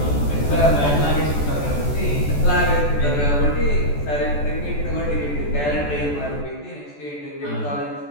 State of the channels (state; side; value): late; right; 14 ms